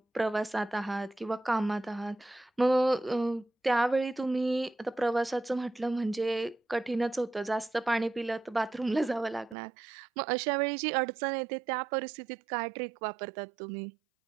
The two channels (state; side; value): drops out; left; at 9.6 s